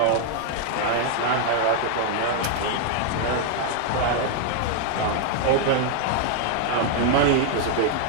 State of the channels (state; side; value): different; both; correlation 0.00